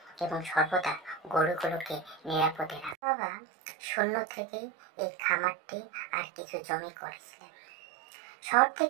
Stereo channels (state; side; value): drops out; left; at 3.0 s